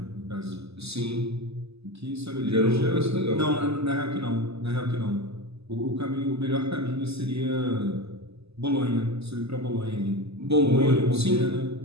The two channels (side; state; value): left; late; 0.79 ms